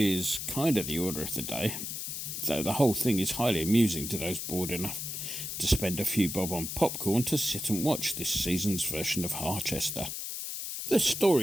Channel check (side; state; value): left; noise; hiss, 5 dB below the sound